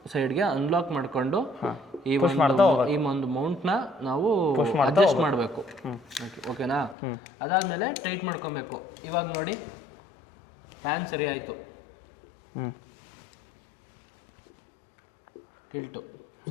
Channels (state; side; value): drops out; right; at 7.0 s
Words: ಸೈಡ್ಗೆ ಅನ್ಲಾಕ್ ಮಾಡಿಕೊಂಡು ಈ ಒಂದು ಮೌಂಟ್ನ ನಾವು ಅಡ್ಜಸ್ಟ್ ಮಾಡಬೇಕು. ಓಕೆನಾ? ಅದಾದಮೇಲೆ ಟೈಟ್ ಮಾಡ್ಕೊಬೇಕು. ಇವಾಗ ನೋಡಿ ಪ್ಯಾನ್ ಸರಿ ಆಯಿತು, ಟಿಲ್ಟು